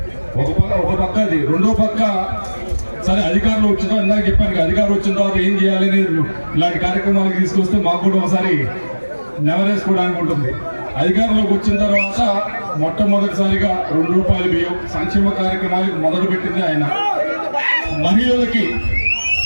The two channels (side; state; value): both; inverted; correlation -1.00